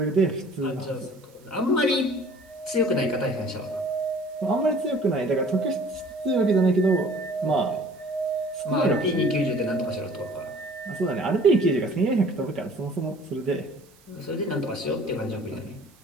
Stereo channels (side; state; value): right; noise; hiss, 30 dB below the sound